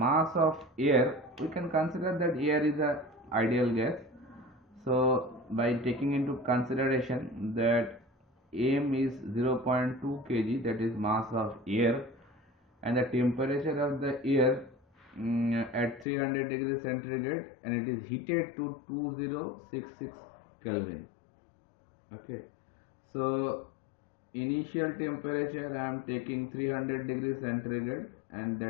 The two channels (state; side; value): drops out; right; at 16.1 s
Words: of air, we can consider that air is a ideal gas. So by taking into consideration that m is 0.2 kg, that is mass of air, and the temperature of the air at 300 degrees centigrade, and it is heated to 2066 Kelvin. Okay, so initial temperature I am taking 300 degrees centigrade, and